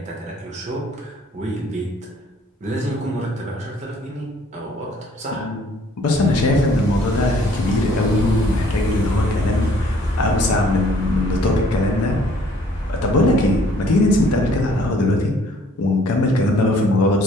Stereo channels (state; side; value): normal; both; correlation 0.59